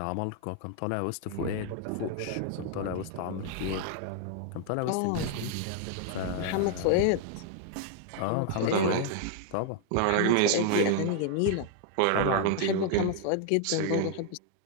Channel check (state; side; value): different; both; correlation 0.00